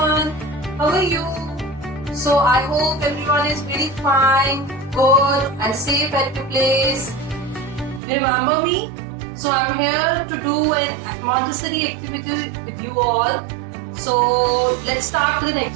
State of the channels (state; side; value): drops out; left; at 8.0 s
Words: How are you? So I hope everyone is really fine, good and safe at your place. You remember me? So I'm here to do an Montessori activity with you all. So let's start with an